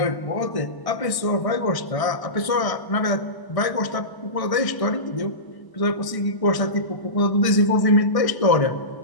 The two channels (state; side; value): late; right; 1.0 ms